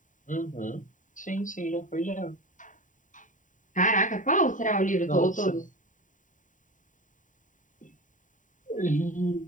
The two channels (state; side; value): late; right; 0.37 ms